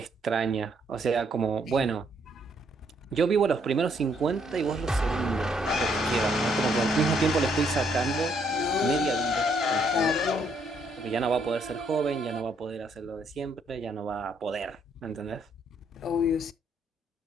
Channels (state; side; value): normal; both; correlation 0.70